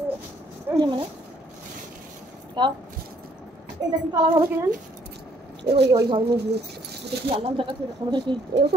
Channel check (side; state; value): both; normal; correlation 0.65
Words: মানে তাও এটা কি কালার হবে কে জানি, ওই ওই ঘর নিয়ে গিয়ে এটা কি আল্লাহ টাকা আমাদের কি এও তো